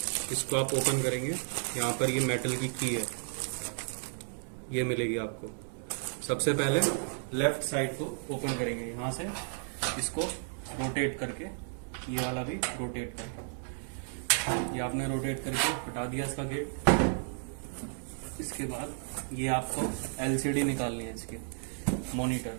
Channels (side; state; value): left; silent; 56 dB below the other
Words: इसको आप ओपन करेंगे, यहाँ पर ये मेटल की की है, ये मिलेगी आपको। सबसे पहले लेफ्ट साइड को ओपन करेंगे, यहाँ से इसको रोटेट करके, ये वाला भी रोटेट करके, ये आपने रोटेट करके हटा दिया इसका गेट। इसके बाद ये आपको एलसीडी निकालनी है इसकी, मॉनिटर।